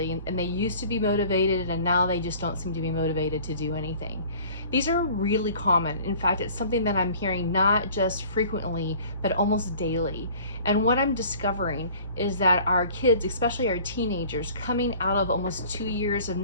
and they used to be motivated and now they just don't seem to be motivated to do anything. These are really common. In fact, it's something that I'm hearing not just frequently, but almost daily. And what I'm discovering is that our kids, especially our teenagers, coming out of almost 2 years of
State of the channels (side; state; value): both; inverted; correlation -0.48